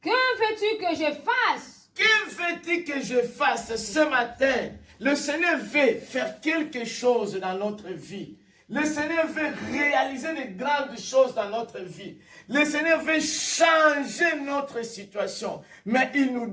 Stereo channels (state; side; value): identical; both; correlation 1.00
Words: Que veux-tu que je fasse? Que veux-tu que je fasse ce matin? Le Seigneur veut faire quelque chose dans notre vie. Le Seigneur veut réaliser de grandes choses dans notre vie. Le Seigneur veut changer notre situation. Mais il nous